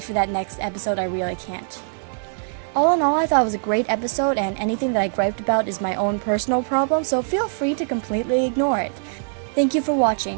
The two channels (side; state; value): left; silent; 64 dB below the other